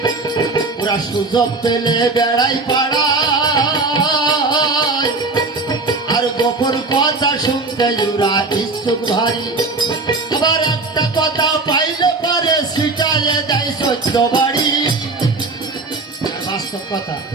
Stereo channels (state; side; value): quieter; left; 3.5 dB